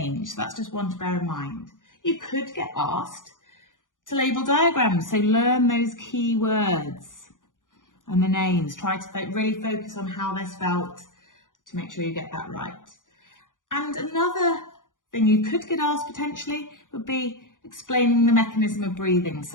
So that's just one to bear in mind. You could get asked to label diagrams, so learn those key words and the names. Try to really focus on how they're spelt to make sure you get that right. And another thing you could get asked potentially would be explaining the mechanism of breathing.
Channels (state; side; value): late; right; 0.88 ms